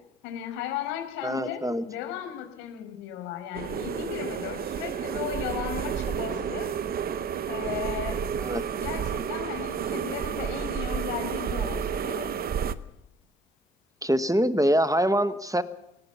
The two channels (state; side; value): normal; both; correlation 0.51